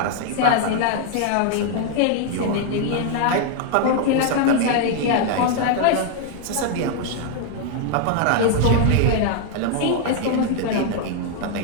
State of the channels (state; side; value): different; both; correlation 0.00